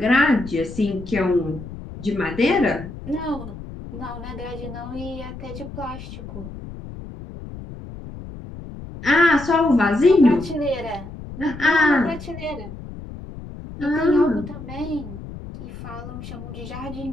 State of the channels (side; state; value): left; noise; rumble, 12 dB below the sound